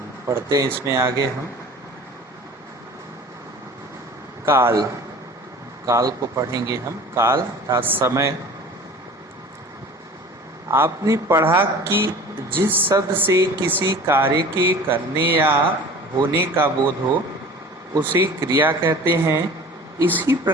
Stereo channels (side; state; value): both; normal; correlation 0.43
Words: पढ़ते हैं इसमें आगे हम काल काल को पढ़ेंगे। हम काल अर्थात समय। आपने पढ़ा कि जिस शब्द से किसी कार्य के करने या होने का बोध हो उसे क्रिया कहते हैं। इसी